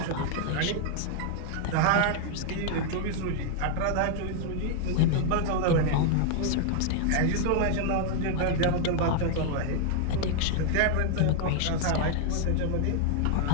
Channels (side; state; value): both; different; correlation 0.00